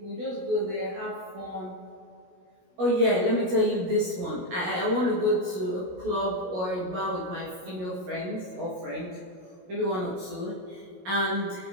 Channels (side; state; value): left; late; 16 ms